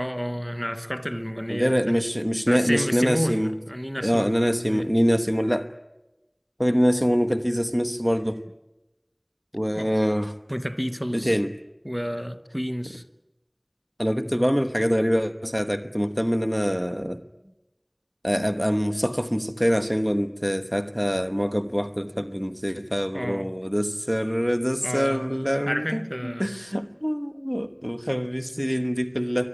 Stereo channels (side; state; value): both; identical; correlation 1.00